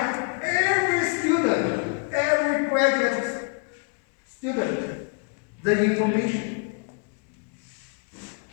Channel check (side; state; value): right; quieter; 36.3 dB